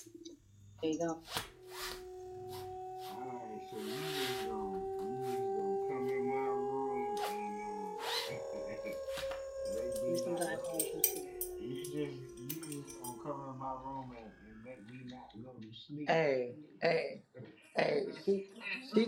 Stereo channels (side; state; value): both; identical; correlation 1.00